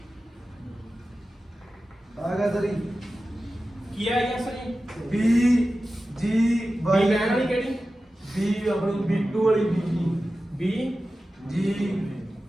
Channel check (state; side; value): normal; both; correlation 0.94